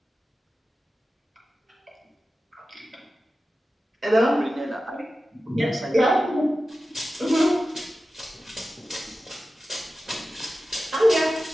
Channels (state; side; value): normal; both; correlation 0.94